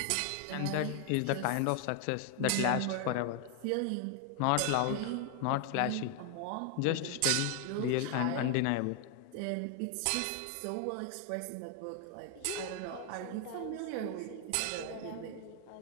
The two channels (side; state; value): both; different; correlation 0.00